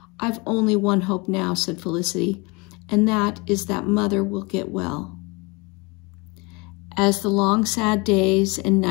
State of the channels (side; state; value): right; quieter; 27.4 dB